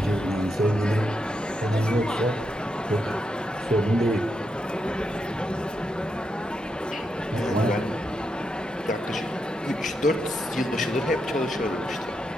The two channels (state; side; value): normal; both; correlation 0.83